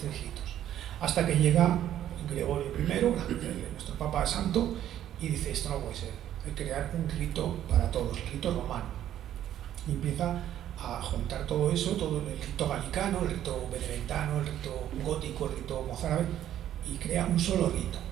ritos. Hasta que llega Gregorio I, nuestro Papa Santo, y dice, esto no puede ser, hay que crear un rito para todos, el rito romano. Y empieza a juntar todo eso, todo el rito galicano, el rito benedictino, el rito gótico, el rito mozárabe, y crea un solo rito.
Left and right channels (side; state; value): left; quieter; 11.5 dB